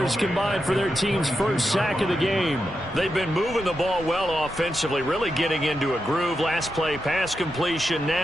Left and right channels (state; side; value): normal; both; correlation 0.87